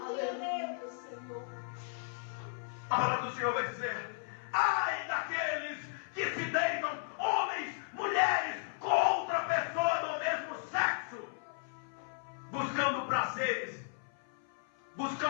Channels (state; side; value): silent; right; 54 dB below the other